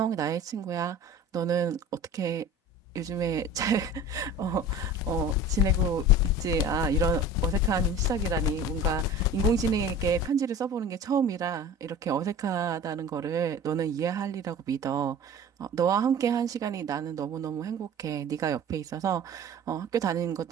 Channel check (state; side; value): normal; both; correlation 0.39